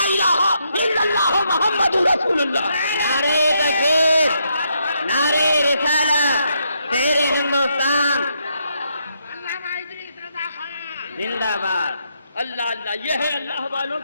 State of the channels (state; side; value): inverted; both; correlation -0.77